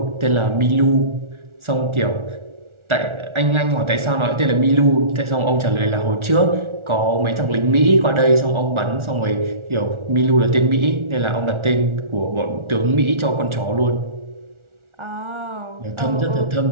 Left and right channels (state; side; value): late; left; 1.4 ms